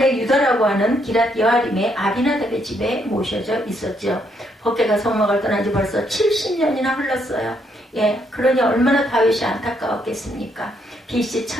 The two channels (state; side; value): normal; both; correlation 0.73